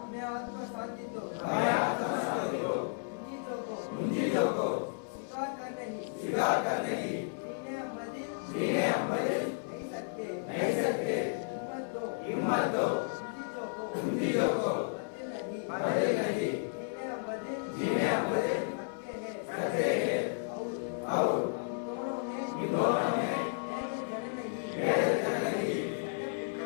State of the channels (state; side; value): silent; right; 55 dB below the other